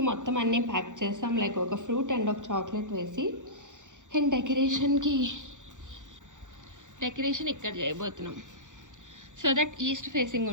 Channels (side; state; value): left; late; 0.86 ms